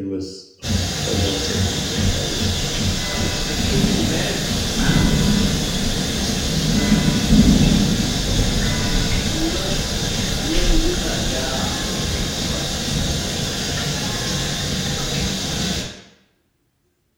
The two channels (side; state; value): both; identical; correlation 1.00